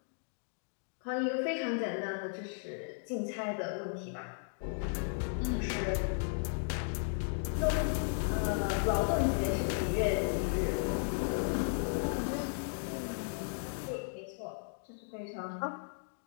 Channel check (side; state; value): right; silent; digital silence